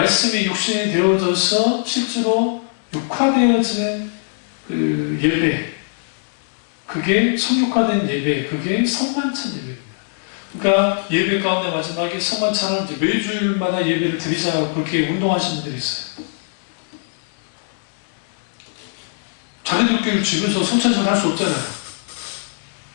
육신이 되어져서 실제로 육화되어진 예배, 그게 성육화된 예배, 그게 성만찬 예배입니다. 그러니까 예배 가운데 마지막에 성만찬을 이제 매주일마다 예배를 드리자고 그렇게 운동하시는 분들이 있어요. 자기들끼리 집에서 성찬식을 할 수 없잖아요.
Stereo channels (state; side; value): silent; right; digital silence